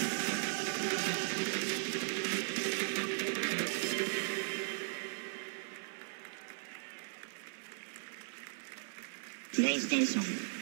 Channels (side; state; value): left; silent; 53 dB below the other